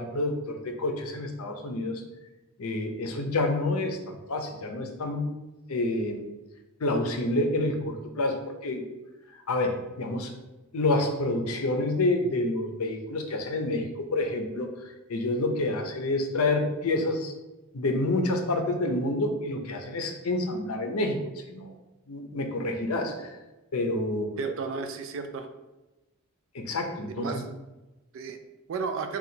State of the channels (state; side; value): normal; both; correlation 0.10